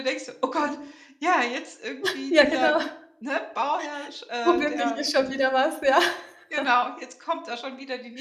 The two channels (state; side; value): identical; both; correlation 1.00